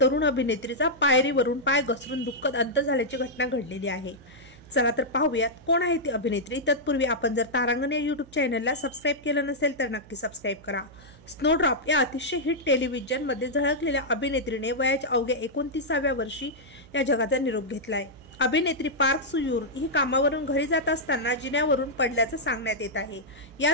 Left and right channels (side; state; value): right; noise; hum, 22 dB below the sound